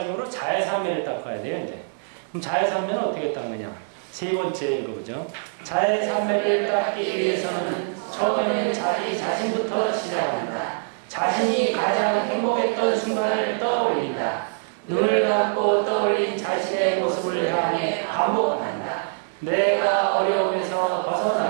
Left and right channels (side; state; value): left; silent; digital silence